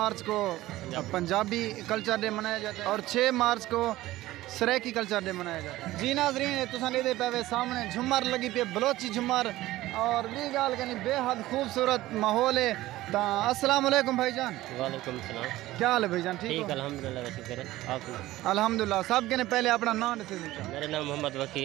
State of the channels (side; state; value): left; quieter; 16.6 dB